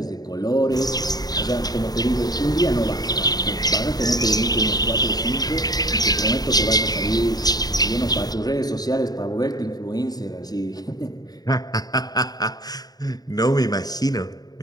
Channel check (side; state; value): right; late; 0.19 ms